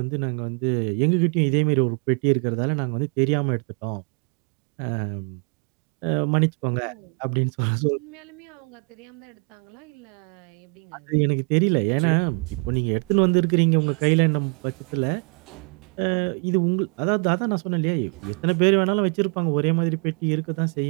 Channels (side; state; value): left; quieter; 36.6 dB